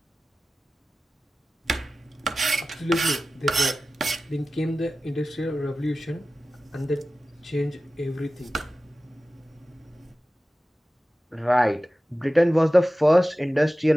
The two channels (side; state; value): both; normal; correlation 0.95